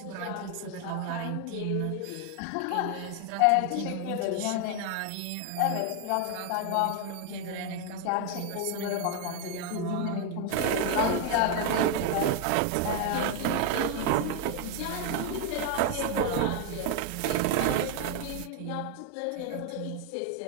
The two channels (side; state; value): both; different; correlation 0.00